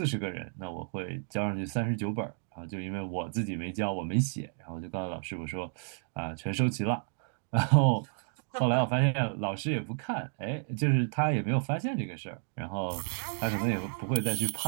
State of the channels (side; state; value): left; silent; digital silence